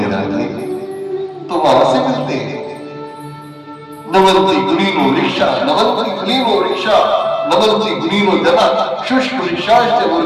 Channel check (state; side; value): identical; both; correlation 1.00